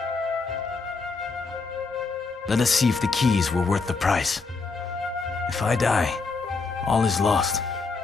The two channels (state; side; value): quieter; right; 4.2 dB